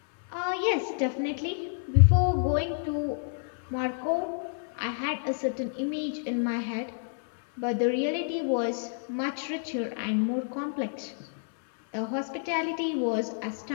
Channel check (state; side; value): silent; right; digital silence